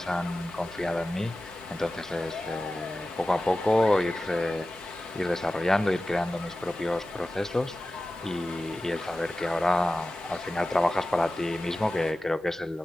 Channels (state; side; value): normal; both; correlation 0.95